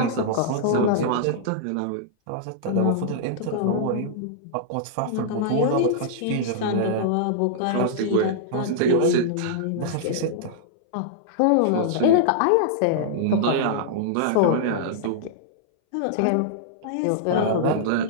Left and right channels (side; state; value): both; different; correlation -0.02